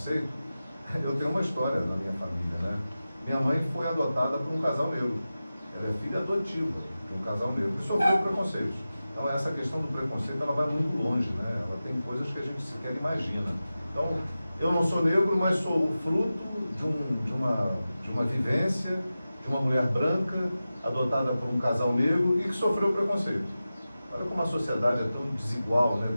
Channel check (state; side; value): inverted; both; correlation -0.94